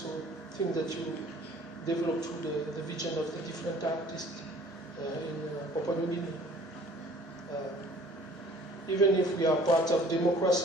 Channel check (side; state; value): both; normal; correlation 0.51